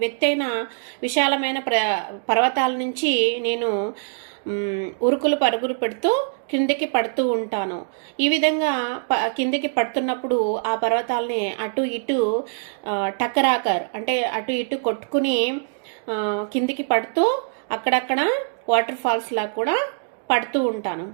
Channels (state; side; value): silent; left; digital silence